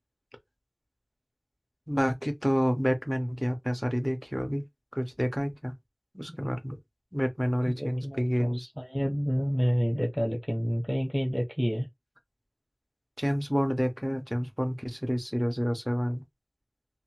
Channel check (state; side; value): identical; both; correlation 1.00